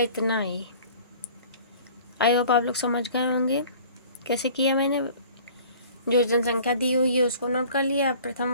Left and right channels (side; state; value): both; inverted; correlation -0.48